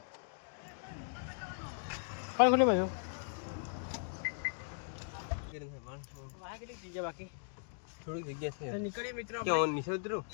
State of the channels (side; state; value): right; silent; digital silence